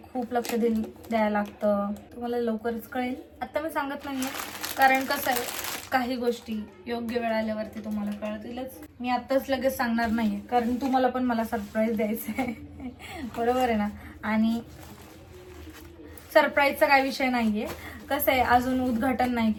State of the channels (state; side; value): identical; both; correlation 1.00